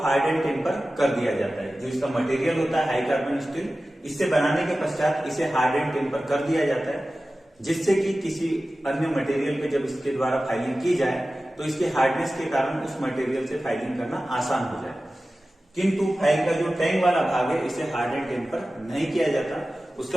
हार्ड एंड टेम्पर कर दिया जाता है। जो इसका मटेरियल होता है हाई कार्बन स्टील, इससे बनाने के पश्चात इसे हार्ड एंड टेम्पर कर दिया जाता है, जिससे कि किसी अन्य मटेरियल पे जब इसके द्वारा फाइलिंग की जाए तो इसके हार्डनेस के कारण उस मटेरियल से फाइलिंग करना आसान हो जाए। किंतु फाइल का जो टैंग वाला भाग है इसे हार्ड एंड टेम्पर नहीं किया जाता।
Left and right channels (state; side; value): normal; both; correlation 0.95